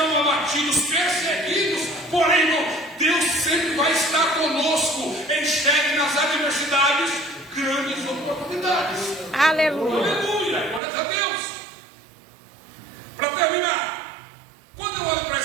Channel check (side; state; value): left; drops out; at 10.8 s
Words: abatidos, perseguidos. Porém, irmão, Deus sempre vai estar conosco. Enxergue nas adversidades grandes oportunidades. Aleluia. Aleluia, glória a Deus. Para terminar, quando eu olho para